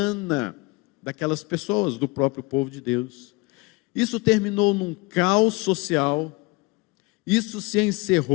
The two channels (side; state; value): right; quieter; 25.0 dB